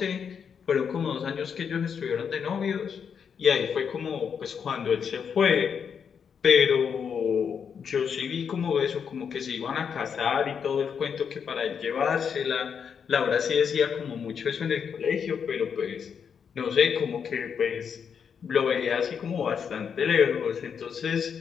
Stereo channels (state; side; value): quieter; right; 7.0 dB